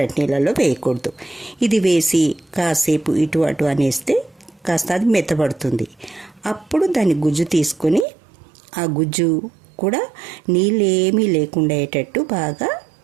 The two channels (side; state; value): left; drops out; at 8.1 s